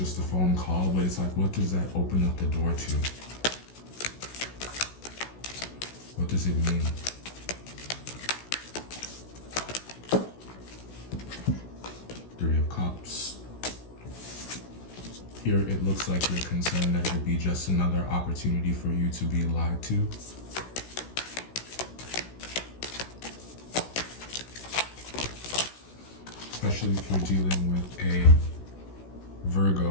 a phone call, but it's like, what does that open up the door to? What does it mean? Three of Cups. Here it looks like you're concerned that it'll be just another opportunity for you to be lied to. Especially if you're dealing with a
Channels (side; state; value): right; late; 16 ms